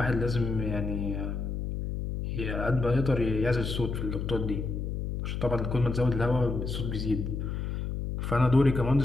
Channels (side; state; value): left; noise; hum, 3 dB below the sound